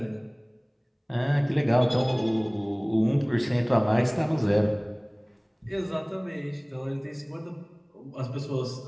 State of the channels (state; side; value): identical; both; correlation 1.00